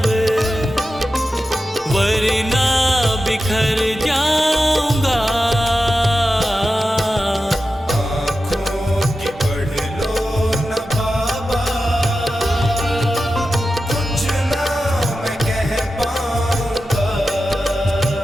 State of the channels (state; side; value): normal; both; correlation 0.92